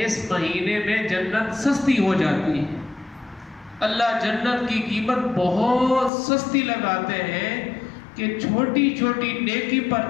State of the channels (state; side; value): drops out; right; at 6.1 s